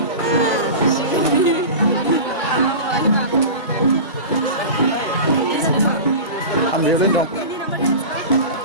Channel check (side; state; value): both; inverted; correlation -0.30